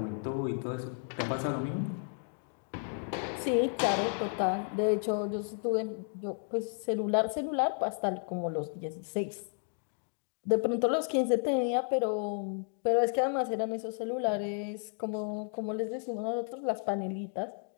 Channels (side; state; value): right; silent; 56 dB below the other